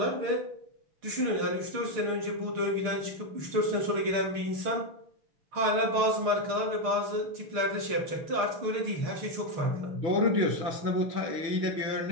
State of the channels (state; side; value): late; left; 6.5 ms